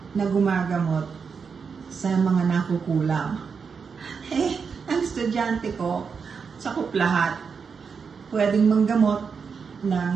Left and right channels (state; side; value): quieter; left; 5.8 dB